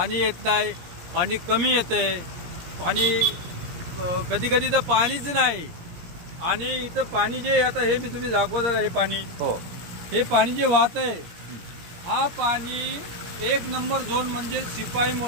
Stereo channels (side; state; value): left; late; 17 ms